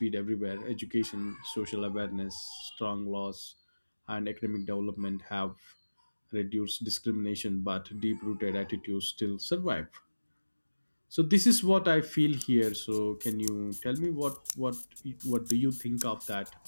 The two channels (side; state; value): both; inverted; correlation -1.00